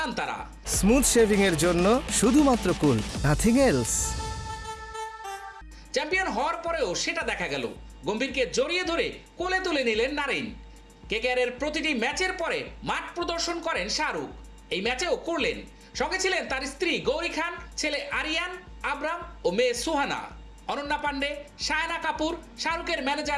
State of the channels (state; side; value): identical; both; correlation 1.00